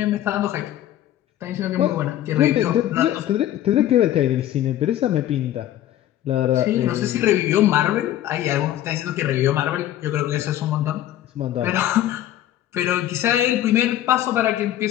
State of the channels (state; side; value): quieter; right; 12.7 dB